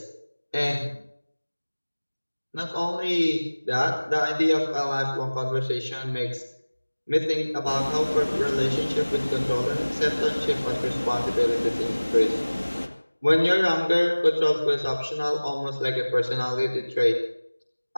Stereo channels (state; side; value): inverted; both; correlation -1.00